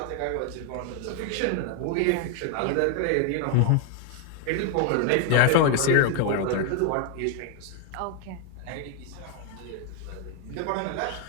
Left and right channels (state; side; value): different; both; correlation 0.00